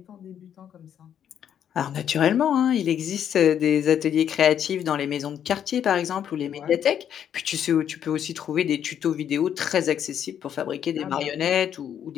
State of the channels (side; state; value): right; quieter; 9.3 dB